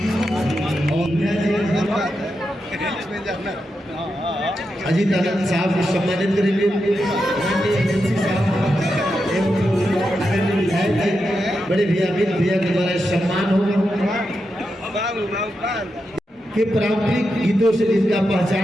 अजीत आनंद साहब को सम्मानित करेंगे। बड़े भैया अमित भैया के द्वारा सम्मान होगा कि पारंपरिक गीतों से जिसका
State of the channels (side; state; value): both; normal; correlation 0.87